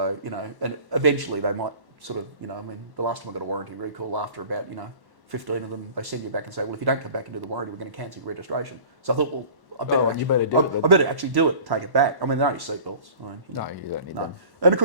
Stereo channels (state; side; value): late; left; 1.1 ms